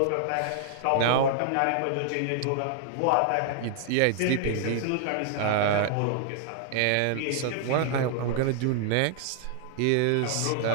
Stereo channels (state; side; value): different; both; correlation -0.01